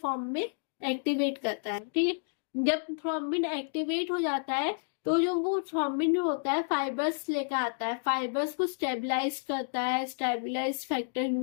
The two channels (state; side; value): silent; right; digital silence